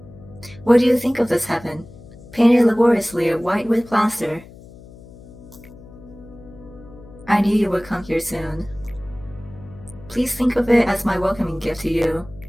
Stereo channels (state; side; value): noise; left; hum, 20 dB below the sound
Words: What do you think of this heaven, painted laboriously white with plaster? I knew you would come here soon. Please think of it as my welcoming gift to you.